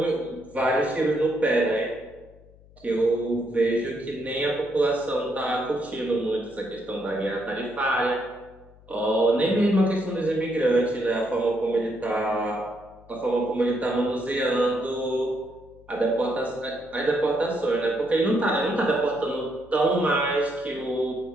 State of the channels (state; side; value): noise; left; hum, 25 dB below the sound